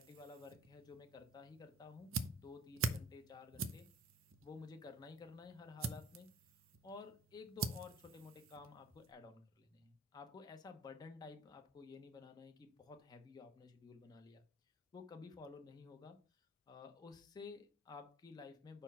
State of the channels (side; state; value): both; normal; correlation 0.51